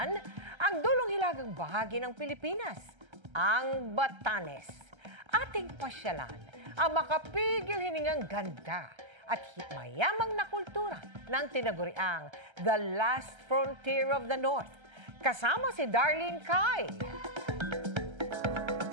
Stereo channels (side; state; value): left; late; 1.3 ms